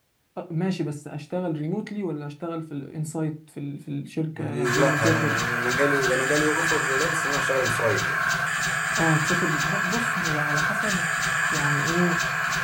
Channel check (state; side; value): identical; both; correlation 1.00